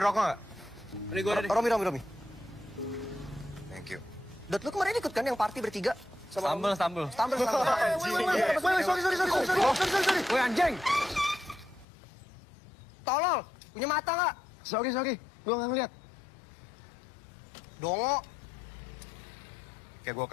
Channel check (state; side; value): drops out; right; at 11.9 s